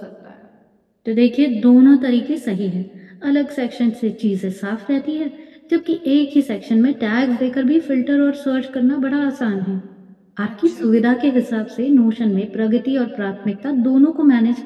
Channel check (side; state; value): both; identical; correlation 1.00